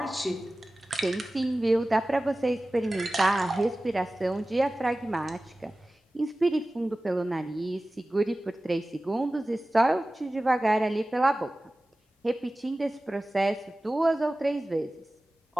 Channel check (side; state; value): both; normal; correlation 0.97